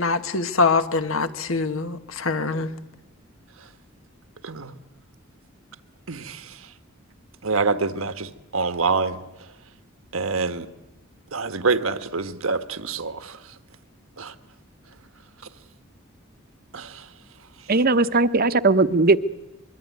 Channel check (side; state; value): both; normal; correlation -0.09